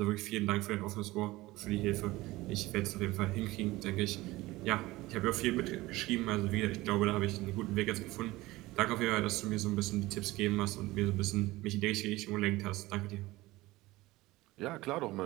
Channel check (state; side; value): quieter; left; 19.2 dB